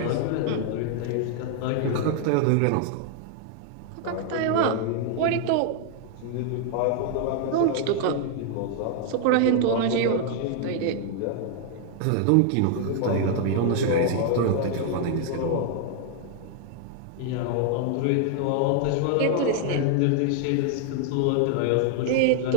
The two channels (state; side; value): different; both; correlation 0.00